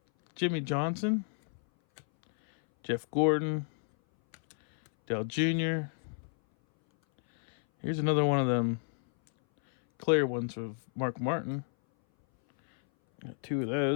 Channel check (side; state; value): right; silent; 57 dB below the other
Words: Jimmy Johnson, Jeff Gordon, Dale Jr. Here's another one of them clear ones of Mark Martin. Got 2 of